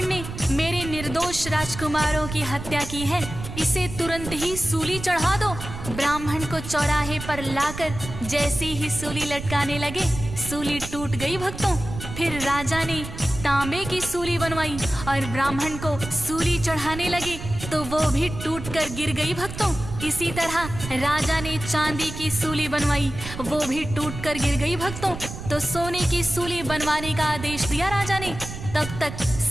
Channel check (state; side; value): noise; right; rumble, 10 dB below the sound